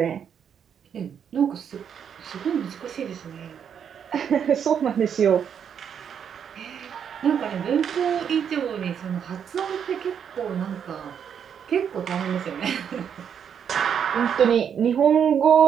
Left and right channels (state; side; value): quieter; left; 8.0 dB